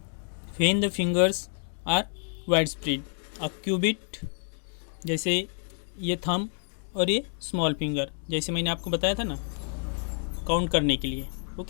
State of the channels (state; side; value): silent; right; 59 dB below the other